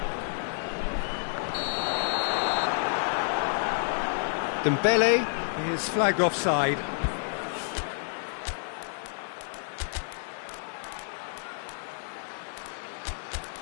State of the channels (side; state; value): right; silent; digital silence